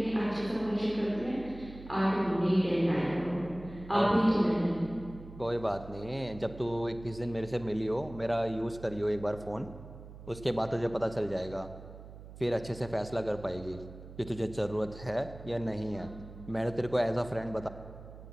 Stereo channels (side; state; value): right; noise; hum, 15 dB below the sound